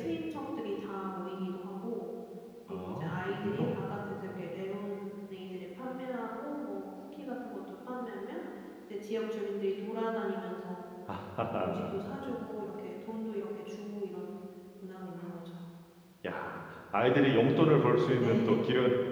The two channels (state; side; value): identical; both; correlation 1.00